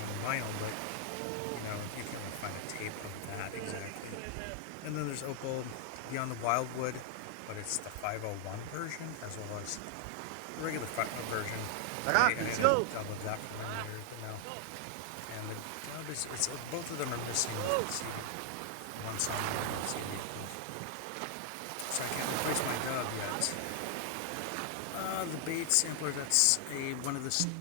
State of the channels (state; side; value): different; both; correlation 0.00